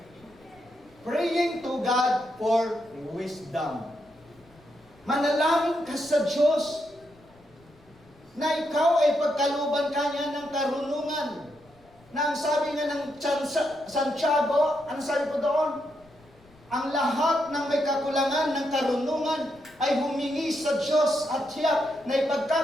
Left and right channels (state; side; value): noise; left; rumble, 29 dB below the sound